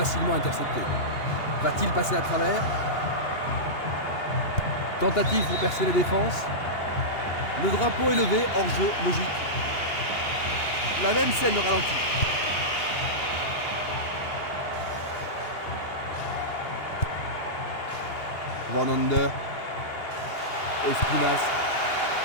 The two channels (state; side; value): late; right; 2.8 ms